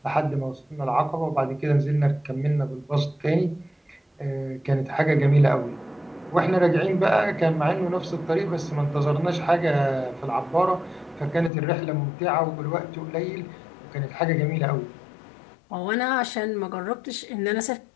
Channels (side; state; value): right; drops out; at 11.5 s